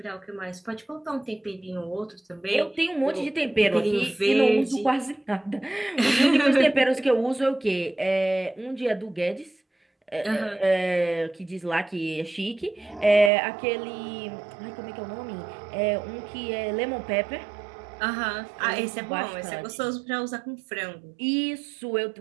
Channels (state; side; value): drops out; left; at 13.3 s